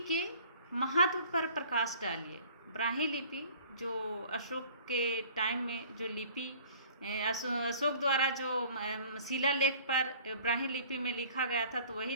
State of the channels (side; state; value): both; inverted; correlation -0.50